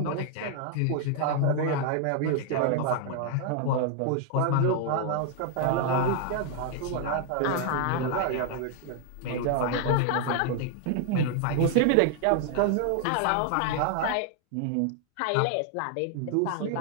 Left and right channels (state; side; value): different; both; correlation 0.00